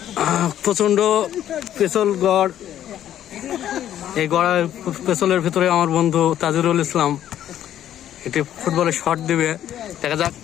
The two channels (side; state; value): right; quieter; 11.3 dB